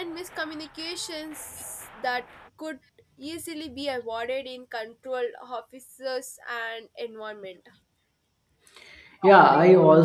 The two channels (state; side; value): identical; both; correlation 1.00